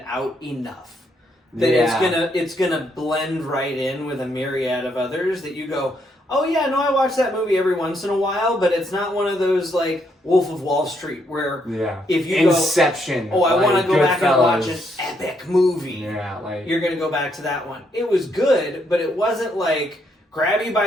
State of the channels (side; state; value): both; normal; correlation 0.74